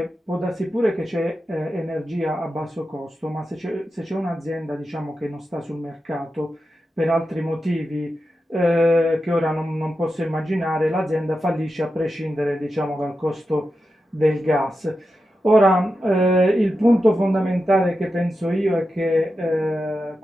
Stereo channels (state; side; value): normal; both; correlation 0.90